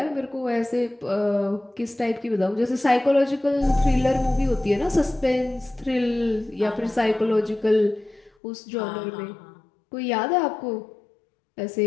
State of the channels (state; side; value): drops out; right; at 8.3 s